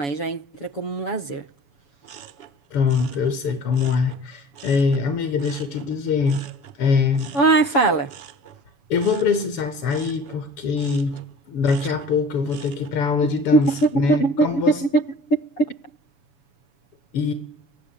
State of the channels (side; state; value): right; late; 7.1 ms